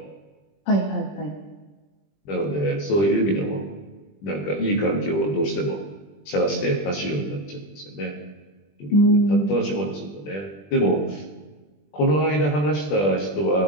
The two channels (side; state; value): right; late; 20 ms